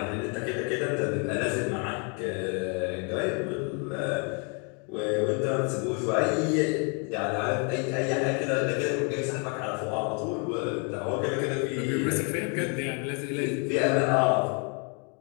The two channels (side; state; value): right; quieter; 36.7 dB